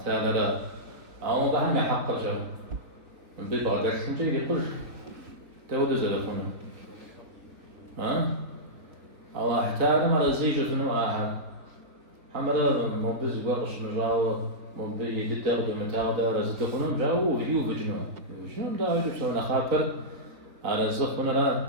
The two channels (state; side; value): late; left; 3.9 ms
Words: تعالى لا أو بهم يحق جو من ببعض سنتي يقول تود زلفنا الله تعالى ما رزيج فنو آخر حمرا مبز وقش مجاو مبز يدتغد ومتاغد رزدخنم جاو وفيو فجنو فجنو دا يجب سونا خاطر أرزقنا لا